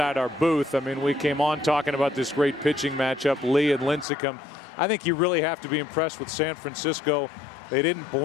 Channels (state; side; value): drops out; right; at 4.0 s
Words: our booth, I mean, we came on talking about this great pitching matchup, Lee and Lincecum. I think you really have to be impressed with San Francisco. They didn't